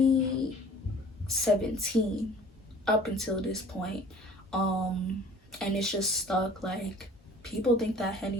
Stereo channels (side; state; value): both; normal; correlation 0.49